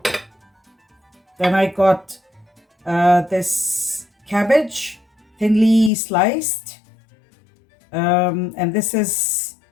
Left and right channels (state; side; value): drops out; right; at 5.9 s